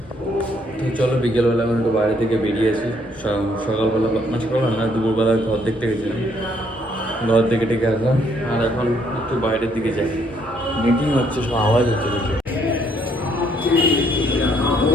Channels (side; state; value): both; normal; correlation 0.68